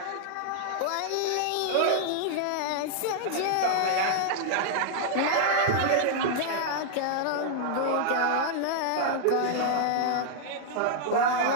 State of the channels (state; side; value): different; both; correlation -0.01